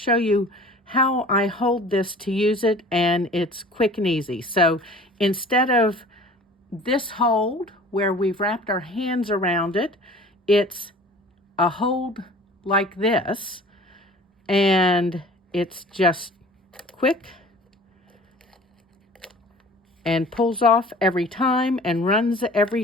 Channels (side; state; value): both; normal; correlation 0.45